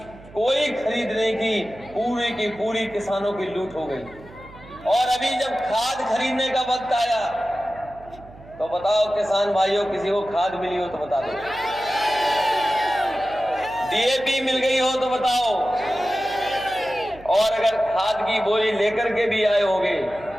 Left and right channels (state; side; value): noise; right; hum, 21 dB below the sound